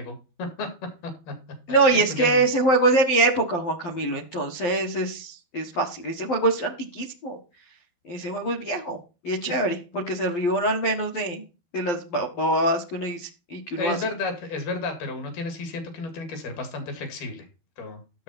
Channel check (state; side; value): late; right; 12 ms